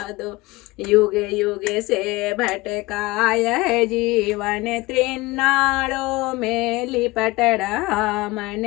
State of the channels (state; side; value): quieter; right; 21.3 dB